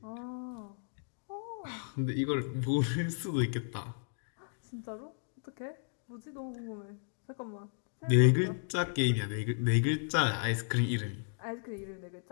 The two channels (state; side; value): silent; right; digital silence